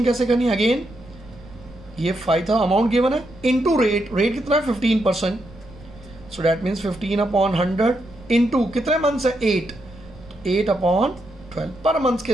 कैसे करनी है, अगेन ये 5000 अमाउंट गिवन है इनटू रेट, रेट कितना है 15%, सो दैट मीन्स 15/100 इनटू कितने मंथ्स है 8, 8/12 पर मंथ के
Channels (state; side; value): noise; right; rumble, 21 dB below the sound